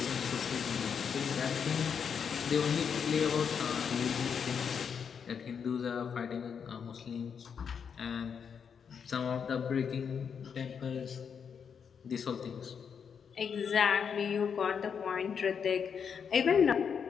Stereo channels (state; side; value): quieter; right; 6.9 dB